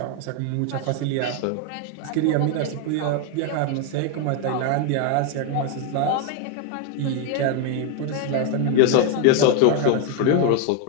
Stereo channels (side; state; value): both; different; correlation 0.01